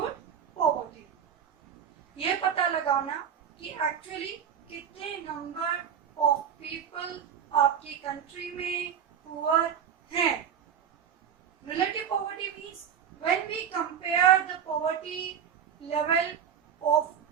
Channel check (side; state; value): left; quieter; 8.2 dB